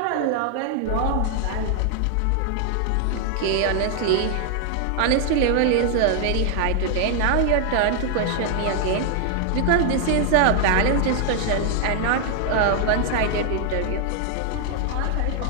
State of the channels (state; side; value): different; both; correlation 0.00